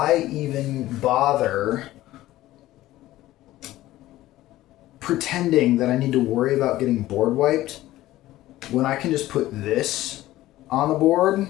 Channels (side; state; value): right; quieter; 15.7 dB